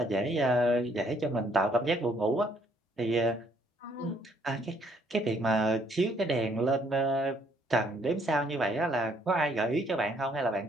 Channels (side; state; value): both; normal; correlation 0.67